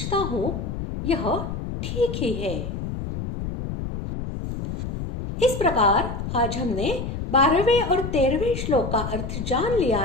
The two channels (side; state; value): left; noise; rumble, 5 dB below the sound